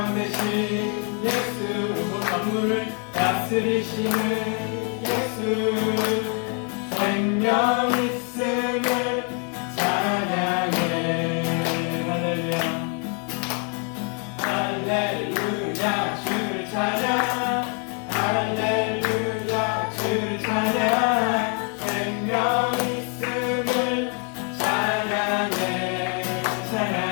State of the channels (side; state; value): right; quieter; 39.1 dB